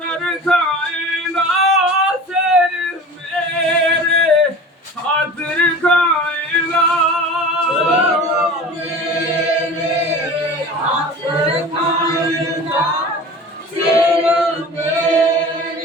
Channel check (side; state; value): both; normal; correlation 0.37